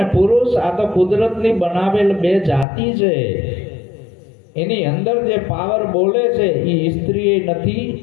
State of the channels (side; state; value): right; drops out; at 2.7 s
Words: પુરુષ આ તો કુદરતની બનાવેલ બે જાતિ છે. એની અંદર જે પાવર બોલે છે એ સ્ત્રી નથી